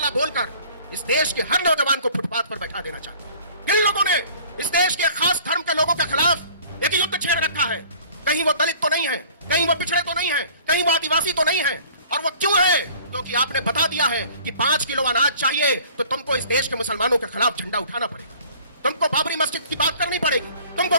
बोलकर इस देश के हर नौजवान को फुटपाथ पर बैठा देना चाहते हैं। इन लोगों ने इस देश के खास धर्म के लोगों के खिलाफ एक युद्ध छेड़ रखा है। कहीं वो दलित तो नहीं है, कहीं वो पिछड़े तो नहीं है, कहीं वो आदिवासी तो नहीं है। और वो क्यों है? क्योंकि आपने बता दिया है कि 5 किलो अनाज चाहिए तो तुमको इस देश के मुसलमानों के खिलाफ झंडा उठाना पड़ेगा, तुमको बाबरी मस्जिद की बात करनी पड़ेगी, तुमको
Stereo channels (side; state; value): both; inverted; correlation -0.50